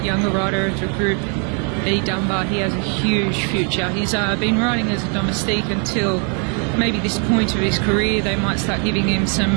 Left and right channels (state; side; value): quieter; left; 38.7 dB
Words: younger rider of the group, E. Dunbar, he has a huge future. He's been riding as a domestique until maybe this point of his career. They might start giving him